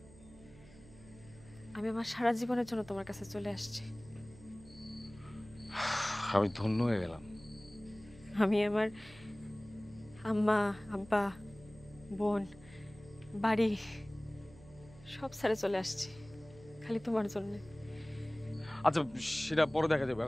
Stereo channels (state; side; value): noise; right; hum, 21 dB below the sound